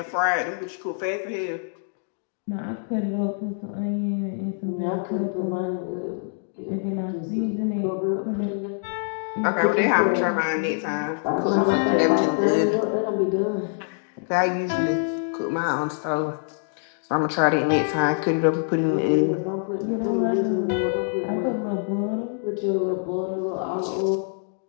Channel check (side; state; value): right; silent; 61 dB below the other